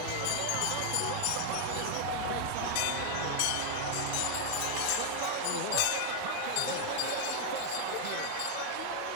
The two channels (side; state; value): both; different; correlation 0.00